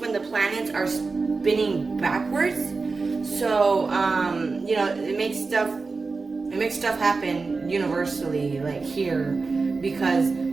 the planets are spinning backwards. So you know, it makes stuff happen universally, like here, because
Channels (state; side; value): quieter; left; 4.1 dB